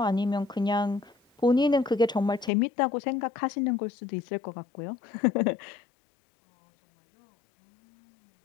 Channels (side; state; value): right; drops out; at 2.5 s